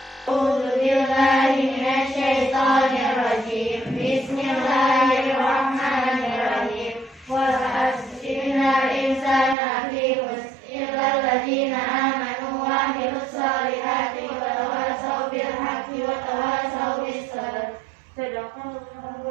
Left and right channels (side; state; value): left; drops out; at 9.6 s